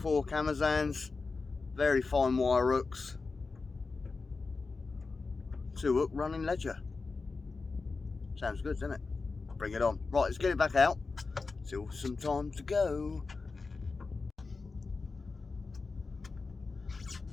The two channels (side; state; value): right; quieter; 4.2 dB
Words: Camazans, very fine wire hooks. 2 hook running ledger. Sounds good, doesn't it? Bring it on. Right, let's get it back out. Still some time to go.